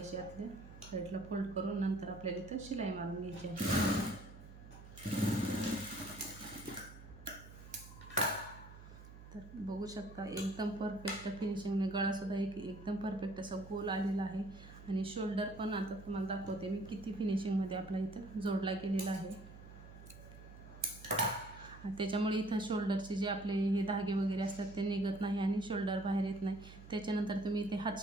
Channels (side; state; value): right; noise; hum, 16 dB below the sound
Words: आतल्या साईडला फोल्ड करून नंतर आपल्याला इथं शिलाई मारून घ्यायची आहे. तर बघू शकता एकदम परफेक्ट फिनिशिंगने गळासुद्धा एकदम परफेक्ट असा गोल आलेला आहे आणि शोल्डर पण आता तुम्हाला दाखवते मी किती फिनिशिंगमध्ये आपला इथं जोडला गेलेला आहे. त्याच्यामुळे इथं शोल्डरचे जे आपले हे धागे वगैरे असतात ते निघत नाही आणि शोल्डर बाहेर येत नाही. त्याच्यानंतर तुम्ही इथे हात